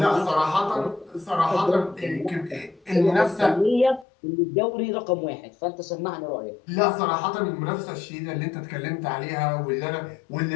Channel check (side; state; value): right; drops out; at 4.0 s